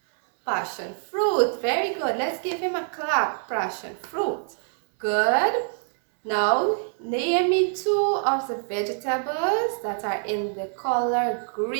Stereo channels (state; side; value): silent; left; digital silence